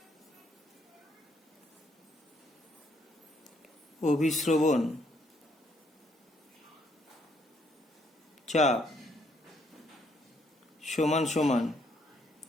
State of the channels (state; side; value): normal; both; correlation 0.70